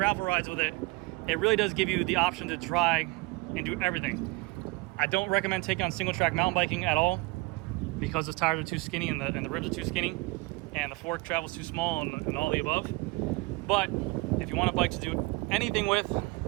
rides with it. It really does give you the option to try and do everything. I don't recommend taking on single track mountain biking at all because the tires are too skinny and the ribs are too skinny and the fork travels too small and all the above. But if you want a bike to do anything with,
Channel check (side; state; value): left; quieter; 24.9 dB